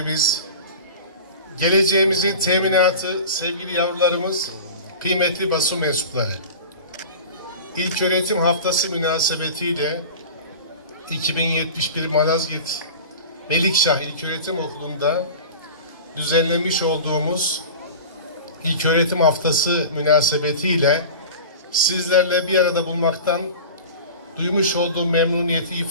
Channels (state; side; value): inverted; both; correlation -0.35